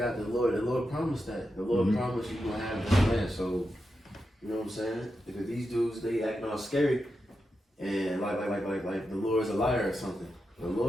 the Lord. The Lord promised that. The Lord promised you gonna have this land. So, you know what I'm saying? Because these dudes, they acting all scary, and like the Lord's a liar or something. The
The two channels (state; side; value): normal; both; correlation 0.88